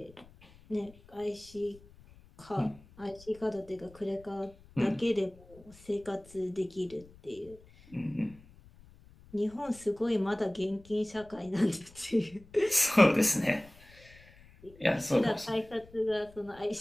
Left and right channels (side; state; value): left; noise; rumble, 24 dB below the sound